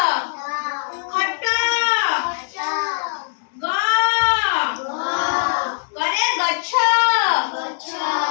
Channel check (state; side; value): silent; right; digital silence